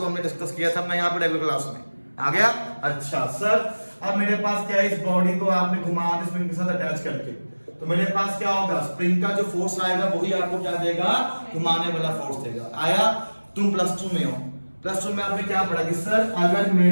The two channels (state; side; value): inverted; both; correlation -1.00